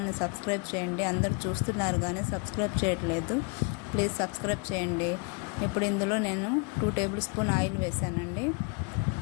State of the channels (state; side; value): quieter; right; 32.1 dB